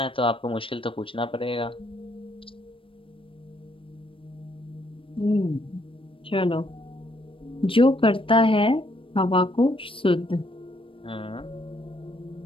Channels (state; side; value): late; right; 0.25 ms